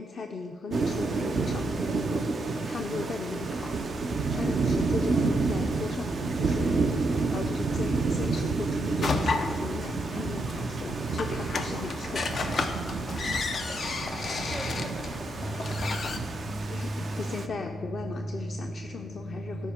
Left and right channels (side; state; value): both; normal; correlation 0.80